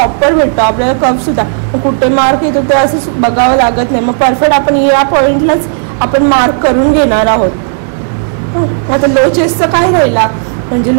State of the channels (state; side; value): silent; left; digital silence